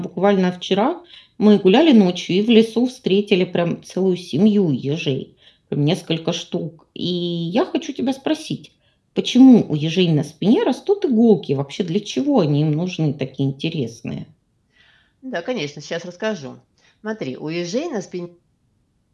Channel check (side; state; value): both; identical; correlation 1.00